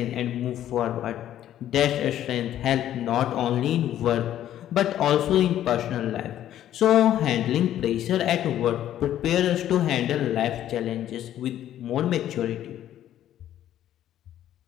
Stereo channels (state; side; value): quieter; right; 11.8 dB